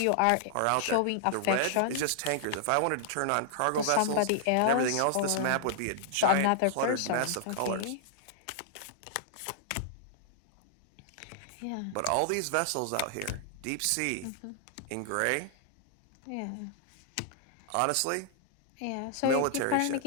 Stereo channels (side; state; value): both; different; correlation -0.01